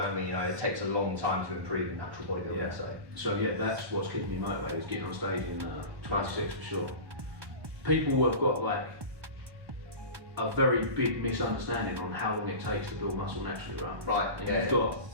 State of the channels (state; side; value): late; left; 1.2 ms